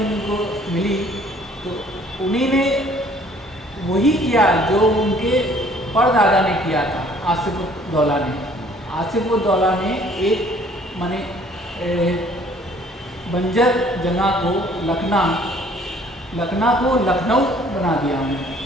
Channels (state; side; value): normal; both; correlation 0.58